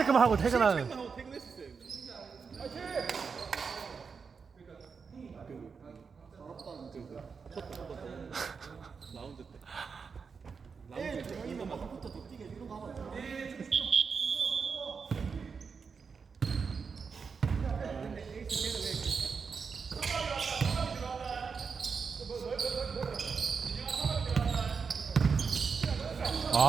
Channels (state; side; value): quieter; left; 5.5 dB